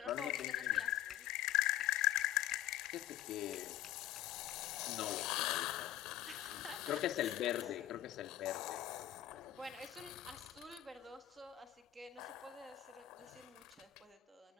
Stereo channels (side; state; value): right; quieter; 13.5 dB